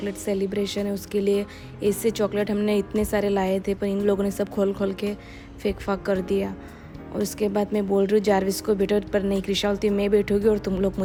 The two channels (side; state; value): both; identical; correlation 1.00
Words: सेलिब्रेशन है उसके लिए, ऐसे चॉकलेट हमने इतने सारे लाए थे पर इन लोगों ने सब खोल खोल के फेंक फाक कर दिया। और उसके बाद मैं बोल रही हूँ जारविस को बैठो, पर नहीं कृषा बोलती मैं बैठूँगी और तुम लोग